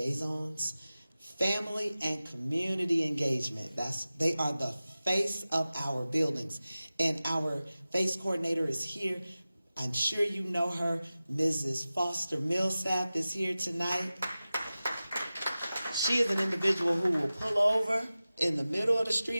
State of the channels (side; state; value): both; inverted; correlation -0.96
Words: Family and community engagement. They are the face of our buildings. And our FACE coordinator is here. I'm sure you know her. Mrs. Foster Millsap is here tonight. She is an individual who will pull over in the middle of the